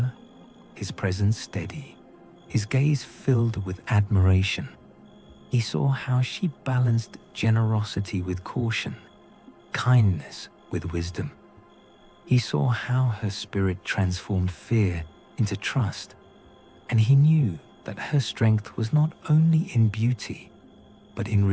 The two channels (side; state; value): both; identical; correlation 1.00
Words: his presence steady, his gaze filled with admiration. He saw how she balanced generosity with caution, kindness with wisdom. He saw how her spirit transformed fear into trust, and he knew that her strength was not only in beauty, but in